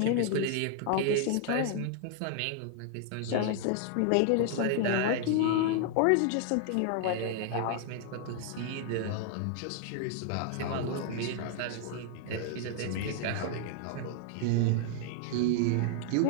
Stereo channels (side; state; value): both; different; correlation 0.00